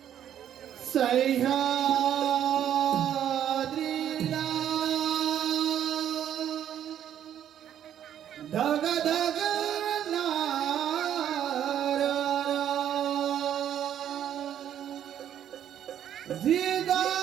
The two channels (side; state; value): left; quieter; 10.2 dB